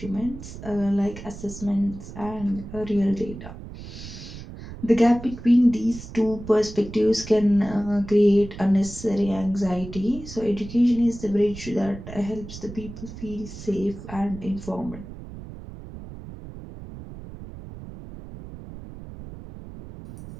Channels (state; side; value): noise; right; rumble, 13 dB below the sound